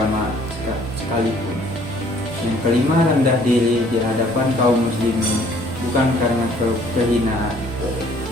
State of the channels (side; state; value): both; normal; correlation 0.59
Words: sekalipun. Yang kelima, rendah diri di hadapan kaum muslimin bukan karena kehinaan.